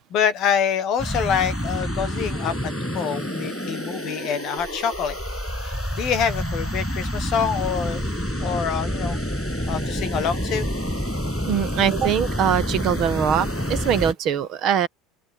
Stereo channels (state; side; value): normal; both; correlation 0.48